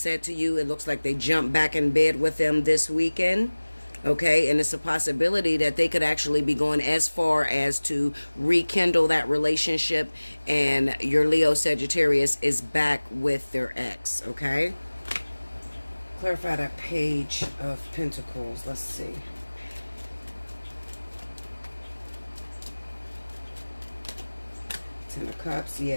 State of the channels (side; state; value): both; inverted; correlation -1.00